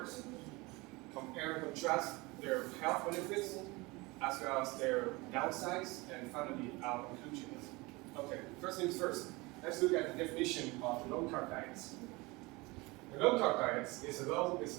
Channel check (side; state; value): left; quieter; 23.8 dB